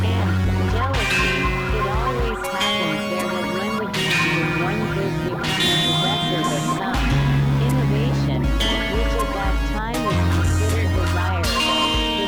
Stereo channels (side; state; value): both; identical; correlation 1.00